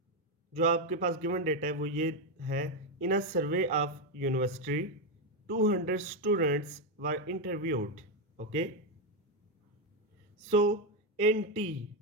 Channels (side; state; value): both; normal; correlation 0.06